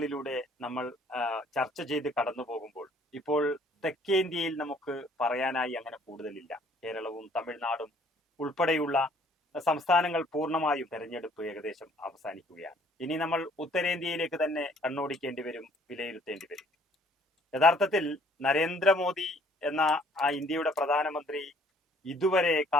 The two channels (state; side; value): normal; both; correlation 0.60